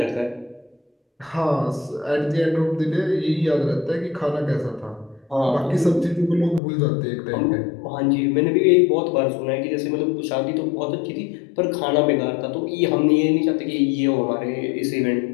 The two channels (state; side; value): drops out; right; at 6.6 s